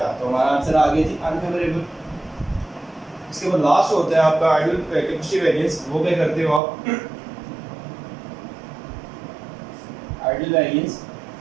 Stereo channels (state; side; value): drops out; left; at 6.6 s